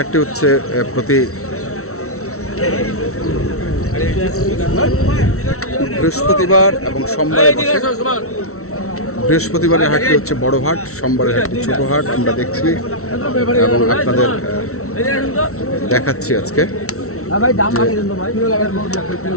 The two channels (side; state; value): right; late; 0.63 ms